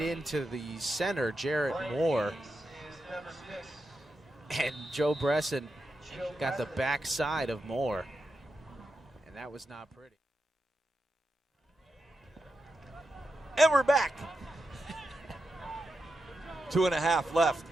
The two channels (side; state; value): both; normal; correlation 0.88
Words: the center, Jarrett Moore. And Joe Bresson got the backside of Moore. And that was not pretty. And we're back. 2.5 left